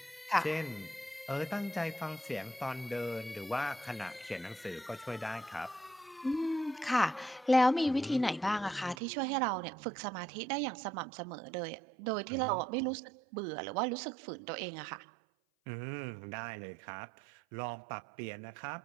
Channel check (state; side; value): drops out; left; at 9.0 s